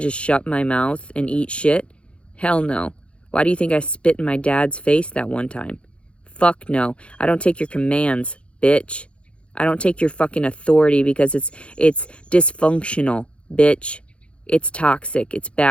shut my mouth and eat shit? Hell no. Why do you think I spit in my dad's face that one time? Fuck no. I don't take your commands, bitch. I don't take your fucking authority because it's dysfunctional. Bitch, it's toxic, it's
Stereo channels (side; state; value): right; late; 0.059 ms